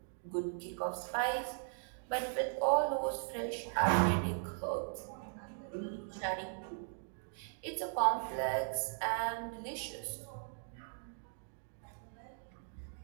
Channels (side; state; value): left; silent; digital silence